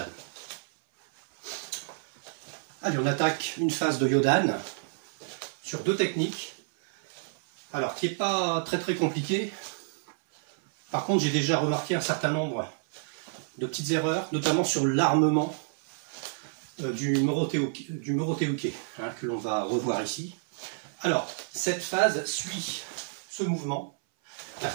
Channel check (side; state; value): left; silent; 58 dB below the other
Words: Allez, on attaque une phase de Yodan sur deux techniques. Alors, qui n'est pas très compliqué. Par contre, j'ai déjà remarqué un certain nombre de petites erreurs, notamment sur l'armement du Morote-uke, hein, que l'on va revoir ici. Alors, cette phase suit ce mouvement.